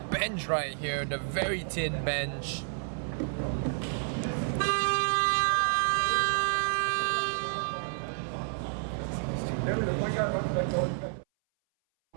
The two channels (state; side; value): silent; left; 58 dB below the other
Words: bench right here, the very thin bench.